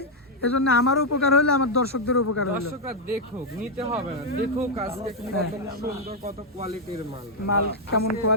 এজন্য আমারও উপকার হলে আমার দর্শকদের উপকার হলো। দর্শকরা দেখুক, নিতে হবে না, দেখুক আজকে কত সুন্দর, কত কোয়ালিটির মাল। মাল কেমন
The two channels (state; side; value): normal; both; correlation -0.01